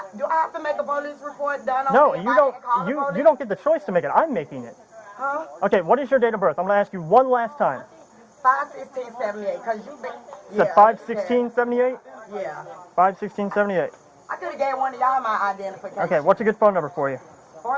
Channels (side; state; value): both; identical; correlation 1.00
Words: do I have to make a police report done on No, me if you I don't. didn't call the police? You don't get the choice to make it. I'm making it. Huh? Okay, what is your date of birth? I'm gonna ask you one last time. 5/16/78. Cause you been. You said 5/16/78. Yeah. 5/16/78. I could have gave one of y'all my identification. Okay, what's a good phone number for you?